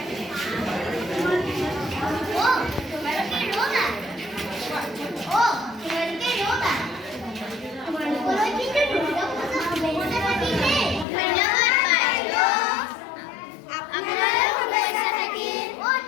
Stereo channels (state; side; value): drops out; right; at 11.1 s